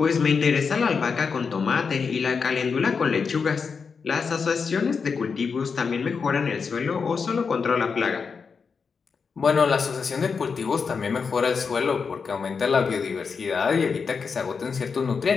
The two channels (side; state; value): right; quieter; 5.5 dB